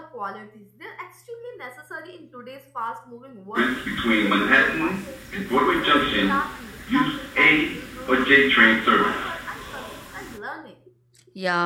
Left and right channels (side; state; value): both; identical; correlation 1.00